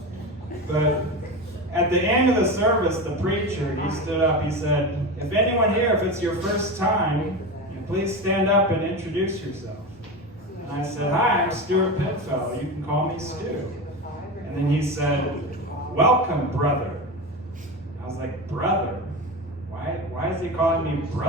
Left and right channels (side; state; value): both; normal; correlation 0.23